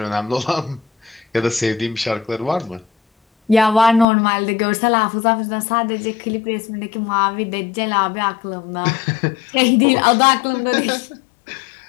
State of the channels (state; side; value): drops out; right; at 4.0 s